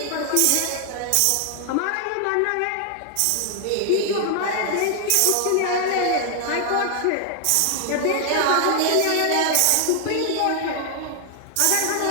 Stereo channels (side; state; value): both; different; correlation 0.00